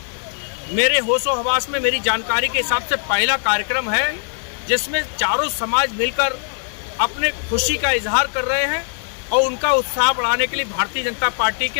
मेरे होशो हवास में मेरी जानकारी के हिसाब से पहला कार्यक्रम है जिसमें चारों समाज मिलकर अपने खुशी का इजहार कर रहे हैं और उनका उत्साह बढ़ाने के लिए भारतीय जनता पार्टी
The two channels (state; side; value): silent; right; digital silence